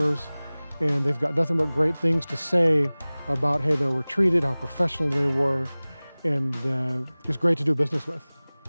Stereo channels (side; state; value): both; inverted; correlation -0.99